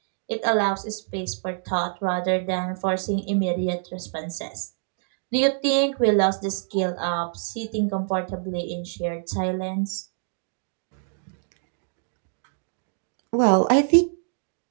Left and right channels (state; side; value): silent; left; digital silence